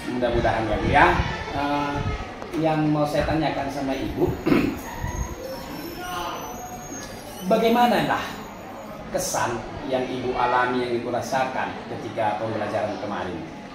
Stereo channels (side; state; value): both; identical; correlation 1.00